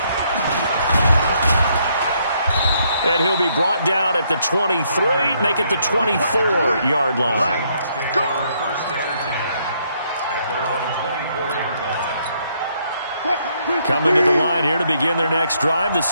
And he'll be brought down at the 23, make it the 24-yard line. Coming to the line here to begin their next drive, the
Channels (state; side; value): inverted; both; correlation -0.72